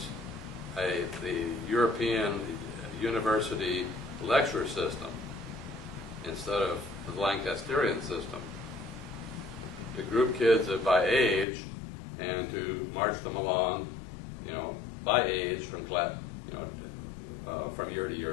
the European university lecture system instead of the Lancasterian system, to group kids by age and to march them along, you know, by age from class, you know, from year to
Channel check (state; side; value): drops out; right; at 11.5 s